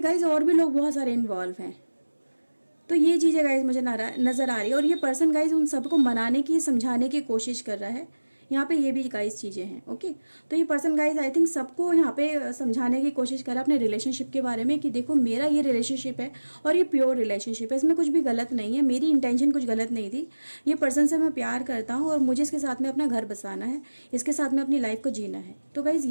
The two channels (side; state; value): both; inverted; correlation -1.00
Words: गाइज और भी लोग बहुत सारे इन्वॉल्व हैं। तो ये चीज़ें गाइज मुझे नज़र आ रही है, और ये पर्सन गाइज उन सबको मनाने की, समझाने की कोशिश कर रहा है। यहाँ पे ये भी गाइज चीज़ें हैं। ओके, तो ये पर्सन गाइज आई थिंक सबको यहाँ पे समझाने की कोशिश कर रहा है अपने रिलेशनशिप के बारे में कि देखो मेरा ये रिलेशनशिप है और ये प्योर रिलेशनशिप है, इसमें कुछ भी गलत नहीं है, मेरी इंटेंशन कुछ गलत नहीं थी। ये पर्सन से मैं प्यार करता हूँ और मुझे इसके साथ में अपना घर बसाना है, इसके साथ में अपनी लाइफ को जीना है। तो गाइज